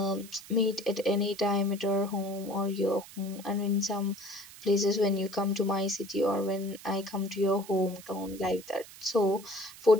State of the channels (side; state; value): right; noise; hiss, 18 dB below the sound